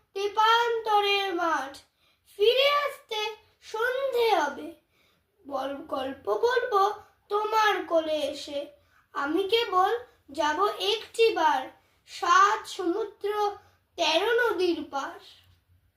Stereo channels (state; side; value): identical; both; correlation 1.00